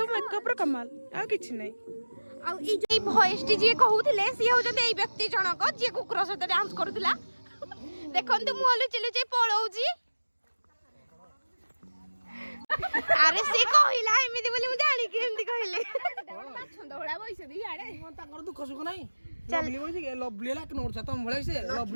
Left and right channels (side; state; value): both; inverted; correlation -1.00